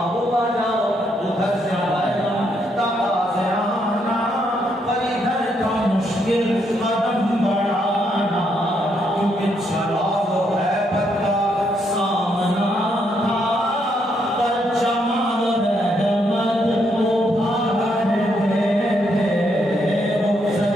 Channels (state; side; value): normal; both; correlation 0.75